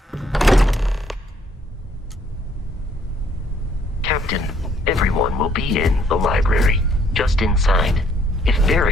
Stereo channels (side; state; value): both; normal; correlation 0.66